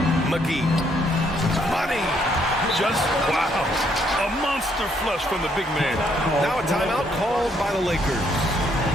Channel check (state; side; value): normal; both; correlation 0.70